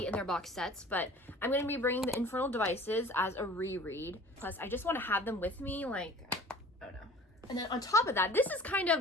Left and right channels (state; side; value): normal; both; correlation 0.46